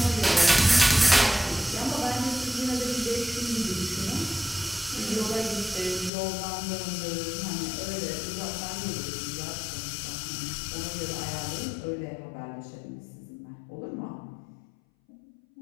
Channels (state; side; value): drops out; right; at 6.1 s